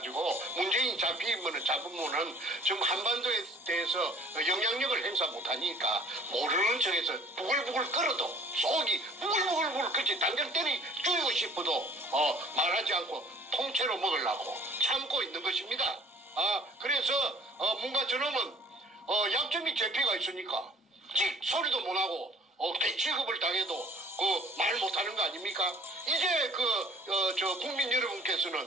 문재인이 잡으면은 지금 한반도에 대해서 영향력을 행사 못하니까 모르는 척해서 부글부글 끓어도 속이 부글부글 그치 당장 때리 죽이고 싶어도 말하지 않고 통째로 먹으려고 참고 있는 것입니다. 그래서 뭔가 저놈은 약점이 제피가 있으니까 소리도 못하고 개취급을 당해도 말 못하는 거 아닙니까? 이제 국민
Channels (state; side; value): normal; both; correlation 0.54